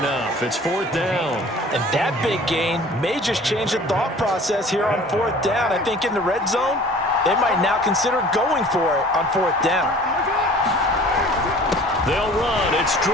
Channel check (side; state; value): both; normal; correlation 0.47